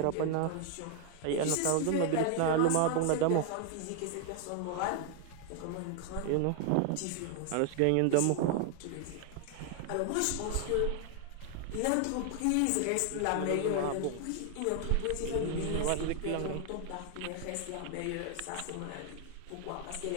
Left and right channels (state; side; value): different; both; correlation 0.00